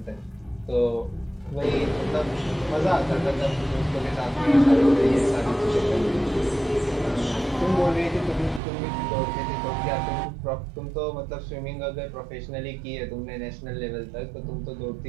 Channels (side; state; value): left; drops out; at 8.6 s